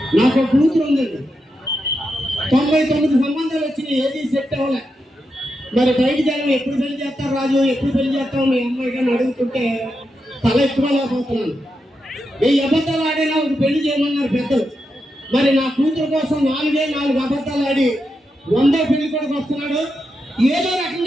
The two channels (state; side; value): normal; both; correlation 0.86